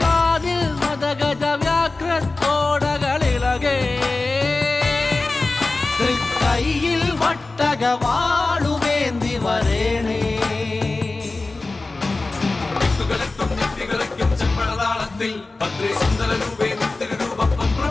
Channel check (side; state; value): right; quieter; 3.4 dB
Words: കാതിൽ മദഗജ വ്യാഘ്രത്തോടകളിളകേ കൈയിൽ വട്ടകവാളുവേന്തി വരേണേ ചെമ്പഴതാളത്തിൽ ഭദ്രേ സുന്ദര രൂപേ നിത്യരൂപം